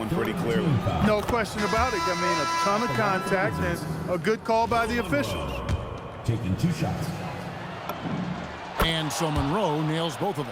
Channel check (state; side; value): identical; both; correlation 1.00